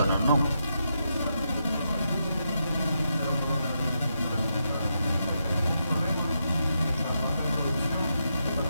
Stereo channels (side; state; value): both; inverted; correlation -0.83